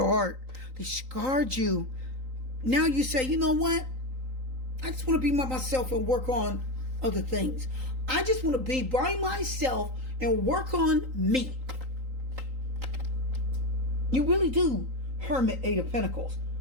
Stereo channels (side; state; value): left; late; 3.8 ms